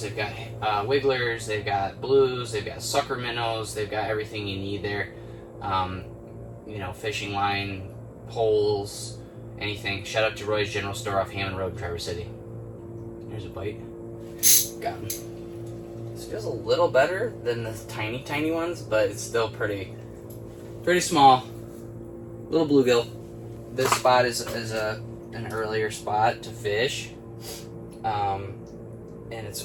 they've got wigglers, they've got blues, they've got sucker minnows, they've got everything you need there. You know, fishing line, poles, anything. Shout out to Roy's General Store off Hammond Road, Traverse City. There's a bite. Got him. This feels a little better than the tiny ones, but it's still pretty small. Little bluegill. This spot is an earlier spot to fish, and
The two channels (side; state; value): both; identical; correlation 1.00